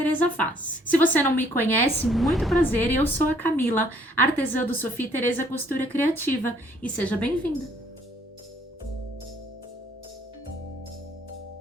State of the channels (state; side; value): normal; both; correlation 0.63